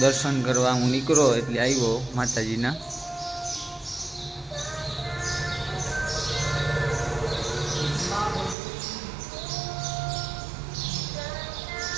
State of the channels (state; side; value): drops out; left; at 8.6 s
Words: दर्शन करवा हूँ निकलो एटले आव्यो माताजीना।